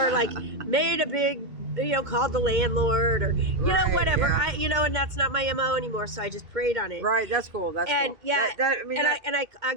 like made a big, you know, called the landlord or, you know, whatever. Yeah. And that's not my MO anymore. So I just prayed on it. Right. That's cool. That's cool. Yeah. I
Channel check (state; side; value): late; left; 2.1 ms